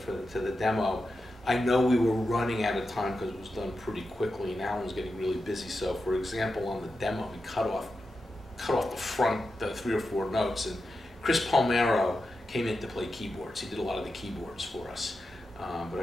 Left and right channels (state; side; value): normal; both; correlation 0.90